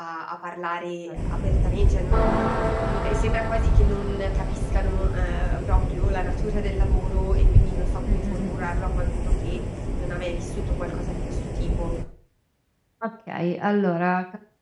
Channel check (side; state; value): both; identical; correlation 1.00